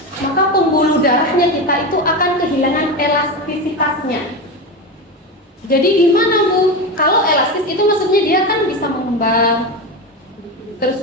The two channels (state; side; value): normal; both; correlation 0.19